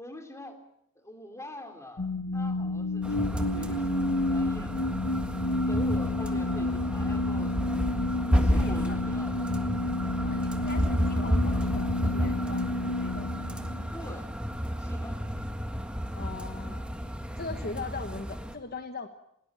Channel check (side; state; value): both; normal; correlation 0.62